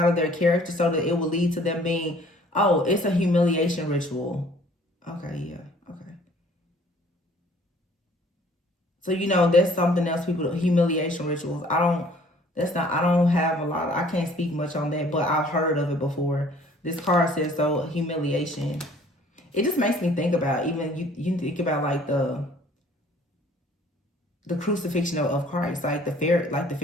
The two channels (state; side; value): normal; both; correlation 0.55